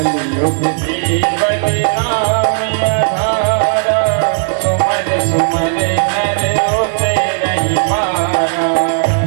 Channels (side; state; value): left; silent; digital silence